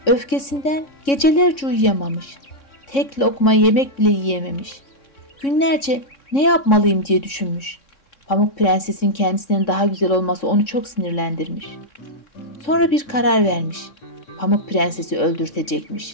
Öfkesinden gecelerce uyuyamamış. Tek lokma yemek bile yiyememiş. Günlerce ne yapmalıyım diye düşünmüş. Pamuk Prenses'in kendisinden daha güzel olması onu çok sinirlendirmiş. Sonra bir karar vermiş. Pamuk Prenses'i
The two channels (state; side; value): late; right; 3.6 ms